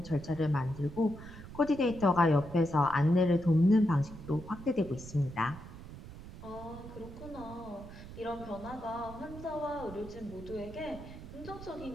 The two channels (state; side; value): noise; right; rumble, 14 dB below the sound